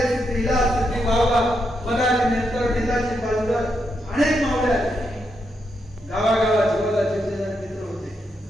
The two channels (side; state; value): both; normal; correlation 0.82